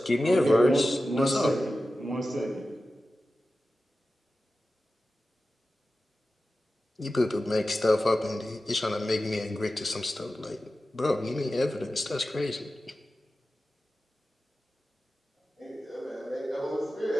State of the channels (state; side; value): normal; both; correlation 0.94